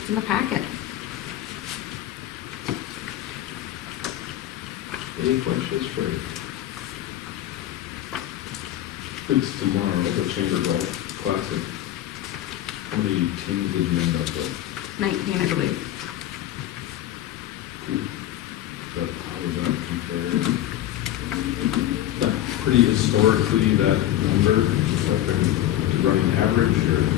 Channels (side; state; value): right; quieter; 13.2 dB